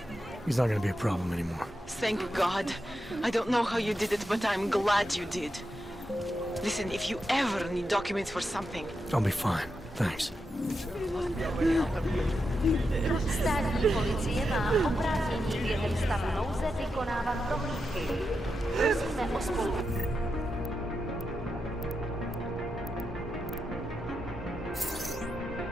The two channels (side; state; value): both; normal; correlation 0.87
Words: He's not gonna be a problem anymore. Thank God. I don't know how you did it, but I'm glad you did. Listen, if you ever need documents for something... I'll be fine. Thanks. Státní policie má oprávnění během stavu nouze vykonávat dohlídky. Prosíme o spolupráci.